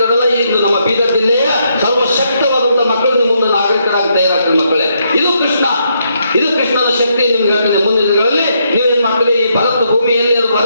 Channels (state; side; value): inverted; both; correlation -0.76